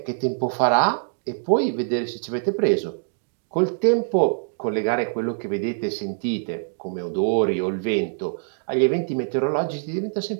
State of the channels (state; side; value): silent; left; digital silence